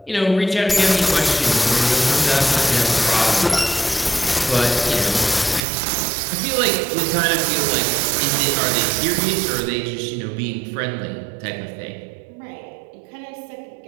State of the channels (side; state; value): left; drops out; at 5.6 s